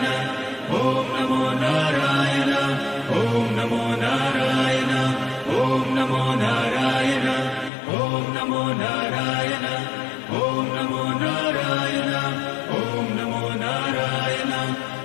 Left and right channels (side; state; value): right; drops out; at 7.7 s